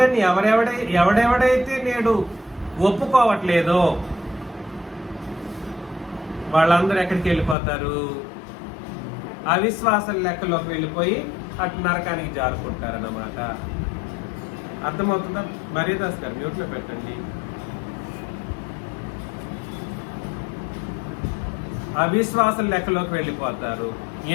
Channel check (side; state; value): right; drops out; at 7.6 s